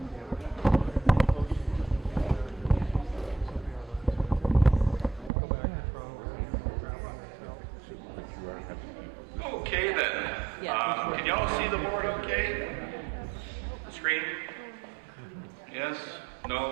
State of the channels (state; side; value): drops out; left; at 5.3 s